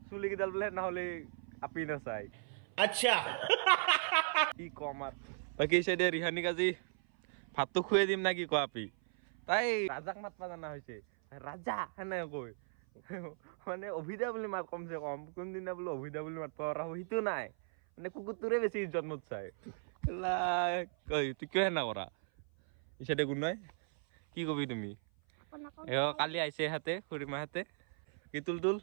চুলি কেইডাল বোলে নহ'লে আপি নাচাই আচ্ছা কি কম আৰু বাকী চাইডে ৰিহানিক আজি ভাতটো খুৱাই দিম না কি কোৱা আপি তাই ৰাজাক মাতবা জানা হৈছে ৰাজা সেনে কৈ মানে অভিদা বুলি মাত কমচে কম কোনদিনা বোলে অভিদা বুলি মাতবা পৰা সেইটো নাই মানে কুকুৰটোৰে বেছি ইজ্জত মত চাই তুই কিয় সেনা কৰা ইচাইডে কোন নাই কি কবি তুমি কালি আহিছে হাতে খুৰীমাহঁতে কি তুল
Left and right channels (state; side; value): silent; left; 53 dB below the other